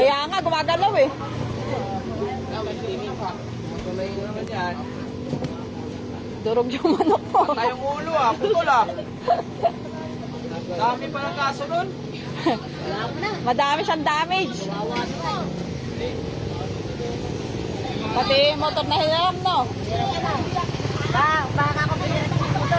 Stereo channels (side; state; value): both; identical; correlation 1.00